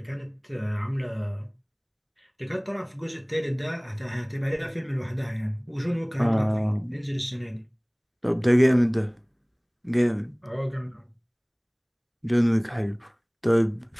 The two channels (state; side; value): identical; both; correlation 1.00